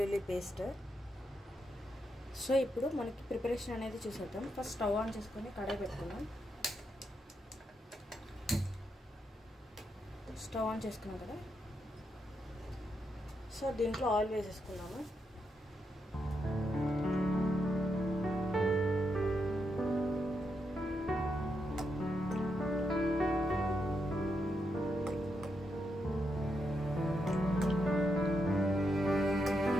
పేస్ట్ సో ఇప్పుడు మనకి ప్రిపరేషన్ అనేది చూసేద్దాం ఫస్ట్ స్టవ్ ఆన్ చేసుకొని కడాయి పెట్టుకుందాం స్టవ్ ఆన్ చేసుకున్నాం కదా సో దీంట్లో ఆయిల్ వేసేసుకున్నాము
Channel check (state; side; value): normal; both; correlation 0.82